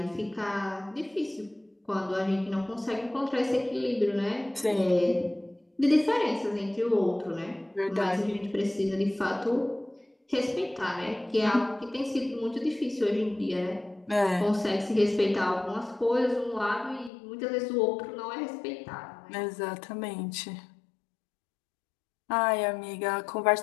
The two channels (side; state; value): right; drops out; at 17.1 s